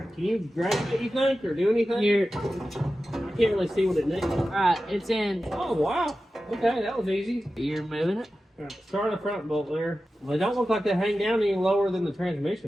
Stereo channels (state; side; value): normal; both; correlation 0.93